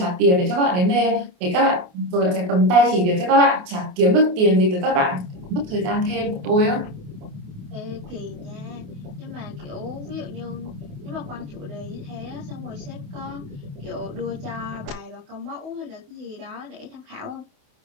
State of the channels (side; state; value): left; late; 28 ms